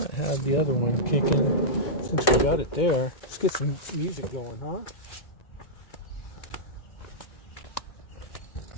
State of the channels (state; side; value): late; right; 2.3 ms